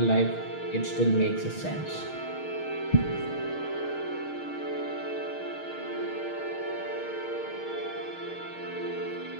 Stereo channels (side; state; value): right; late; 6.4 ms